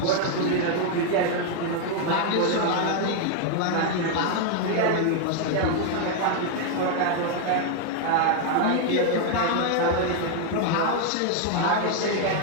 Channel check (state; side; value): different; both; correlation 0.00